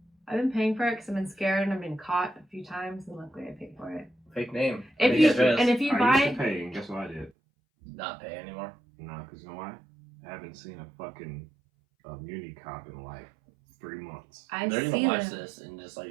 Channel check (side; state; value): left; drops out; at 7.3 s